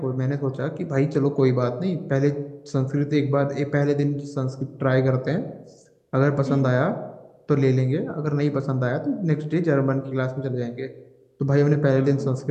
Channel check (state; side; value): identical; both; correlation 1.00